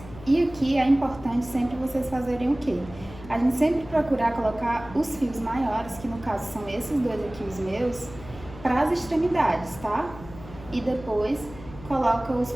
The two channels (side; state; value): left; noise; hum, 16 dB below the sound